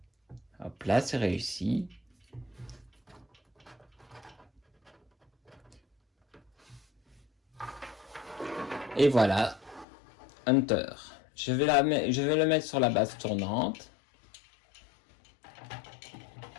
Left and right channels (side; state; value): right; drops out; at 9.9 s